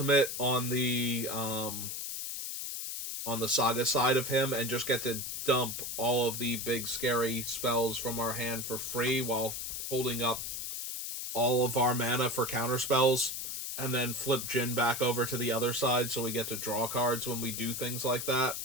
on the saga side of him, and just get to dump all of the big scary spells from our hand for free while holding up all of our mana for counter spells, and then flip Jin back over to the other side so we get to draw cards when we do things like that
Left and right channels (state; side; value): noise; left; hiss, 5 dB below the sound